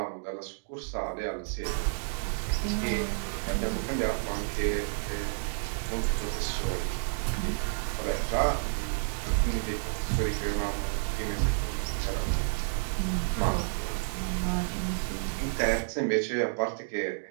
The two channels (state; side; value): silent; left; digital silence